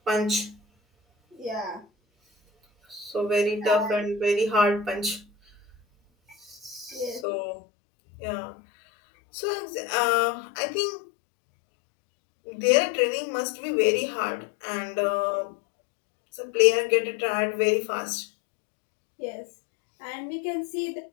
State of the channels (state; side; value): drops out; right; at 7.2 s